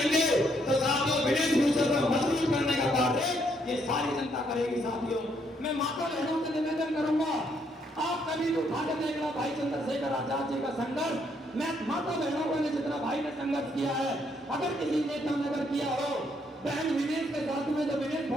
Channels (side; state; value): both; normal; correlation 0.72